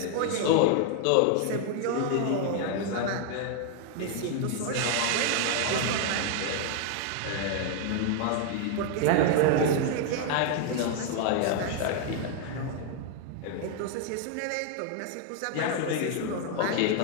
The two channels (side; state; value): both; different; correlation 0.00